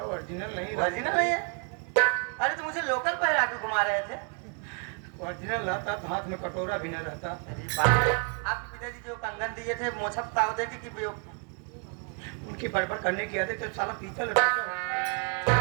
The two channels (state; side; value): quieter; left; 38.9 dB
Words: ओरिजिनल नहीं, ओरिजिनल नहीं है? अरे तो मुझे लोकल पहरा के घुमा रहे थे। ओरिजिनल रहता तो हाथ में कटोरा भी न रहता। अरे बाप, आपके पिताजी जो कंगन दिए थे मोछप ताव दे के कि उनकी बड़बड़ करने की आदत तो साला पीतल।